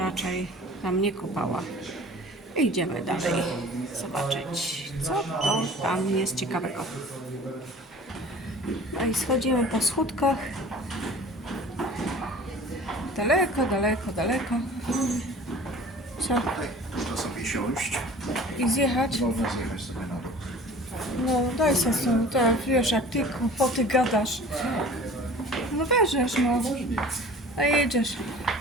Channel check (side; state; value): both; normal; correlation 0.44